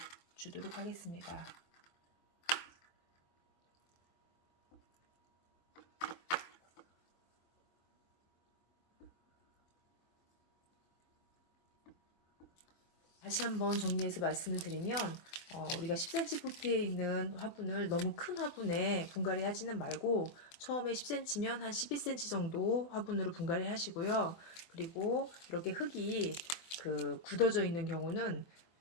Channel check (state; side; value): late; right; 24 ms